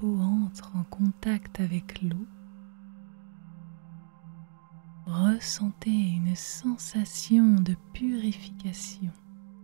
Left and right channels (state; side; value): silent; left; digital silence